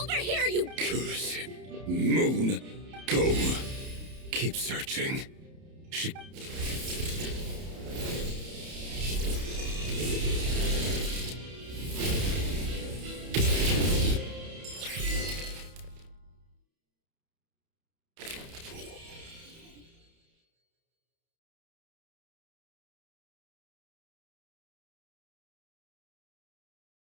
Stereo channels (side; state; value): left; late; 31 ms